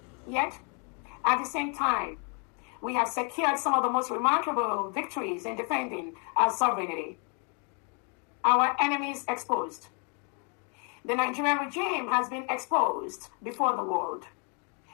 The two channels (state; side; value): quieter; right; 37.4 dB